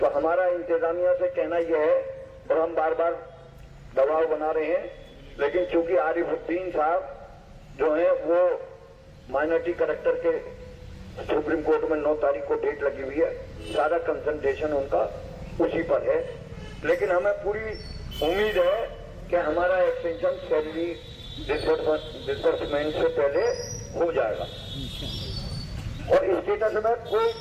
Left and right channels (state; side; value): identical; both; correlation 1.00